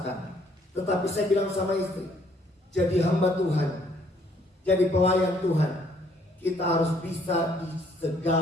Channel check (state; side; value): normal; both; correlation 0.65